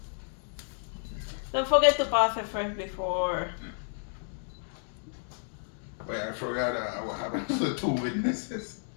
Don't forget to pause it first before. Wait, I forgot what happened to the two witnesses.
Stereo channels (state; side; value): silent; right; digital silence